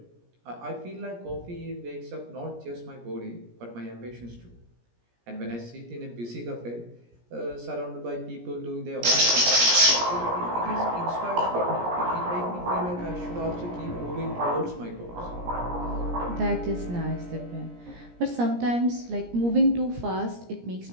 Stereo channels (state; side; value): late; left; 17 ms